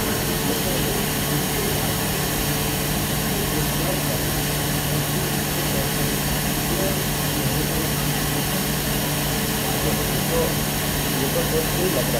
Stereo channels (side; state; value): both; identical; correlation 1.00